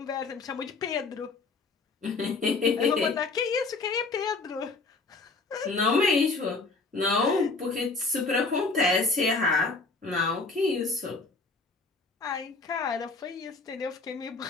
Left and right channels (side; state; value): right; quieter; 3.8 dB